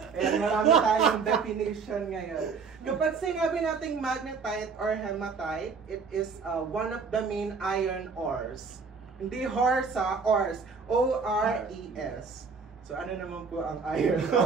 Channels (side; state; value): left; quieter; 5.2 dB